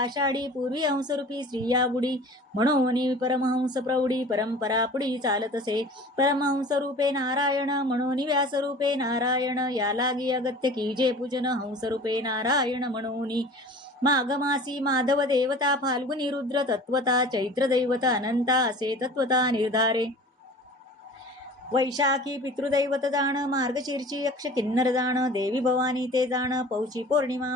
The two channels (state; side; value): normal; both; correlation 0.42